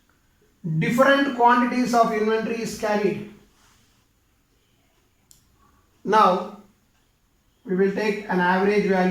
different quantities of inventory is carried. Now we will take an average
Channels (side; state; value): both; identical; correlation 1.00